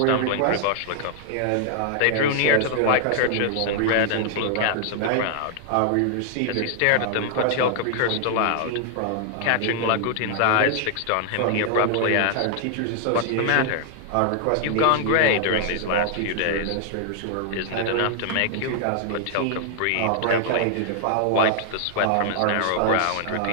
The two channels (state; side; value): different; both; correlation 0.00